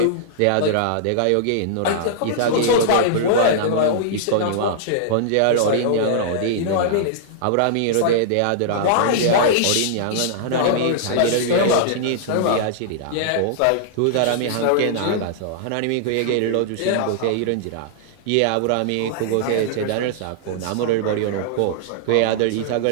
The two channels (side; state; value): both; different; correlation -0.01